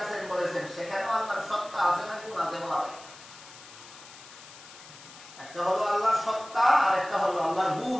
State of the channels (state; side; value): noise; left; hiss, 18 dB below the sound